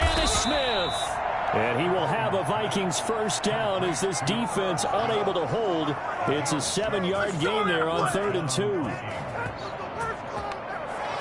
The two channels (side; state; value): both; identical; correlation 1.00